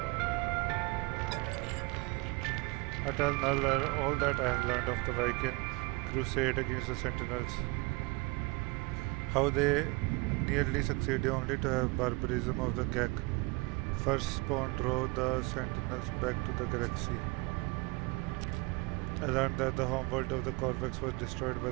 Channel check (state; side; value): quieter; left; 25.9 dB